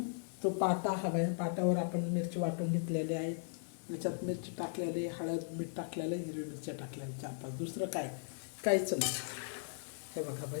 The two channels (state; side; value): silent; right; 53 dB below the other